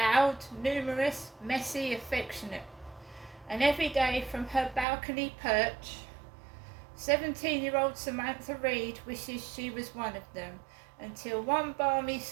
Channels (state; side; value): drops out; left; at 4.9 s